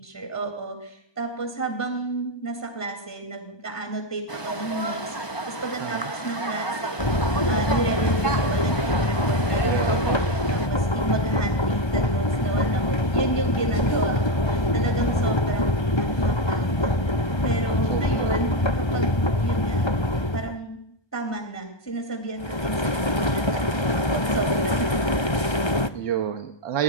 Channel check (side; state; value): right; late; 1.2 ms